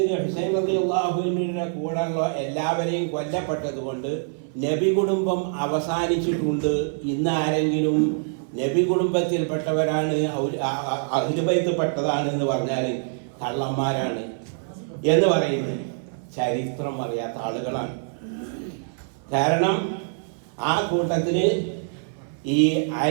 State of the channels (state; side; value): silent; left; 56 dB below the other